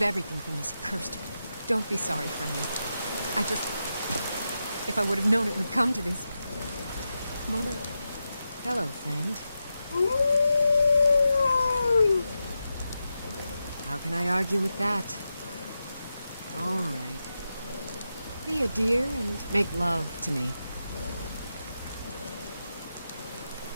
everything from this cursed... Don't be sorry for me. I just... If I would have known it would come to this... Mother... Hello, friend. How can I argue with that? All right. Be a dear and make love to me.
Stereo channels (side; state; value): both; inverted; correlation -0.89